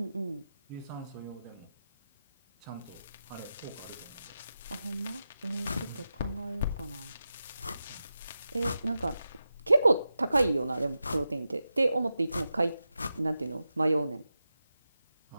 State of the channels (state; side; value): inverted; both; correlation -0.91